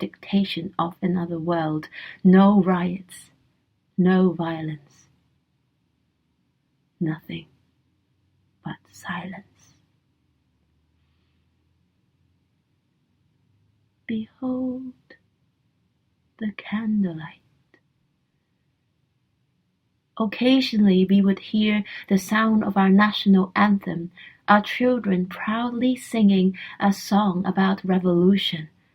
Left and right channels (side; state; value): both; identical; correlation 1.00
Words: of another world, no riots, no violence, nothing but silence. Behold the candlelight. Occasionally we would hear the sound of our national anthem, our children proudly singing a song about revolution.